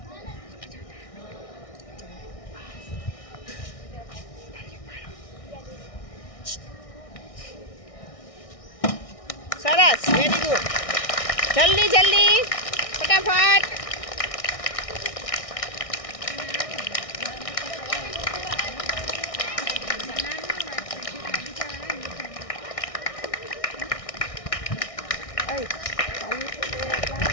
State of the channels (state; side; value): late; right; 1.6 ms